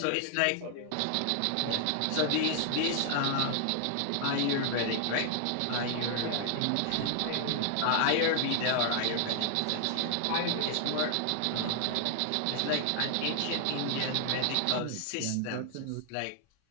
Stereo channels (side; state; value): both; different; correlation 0.00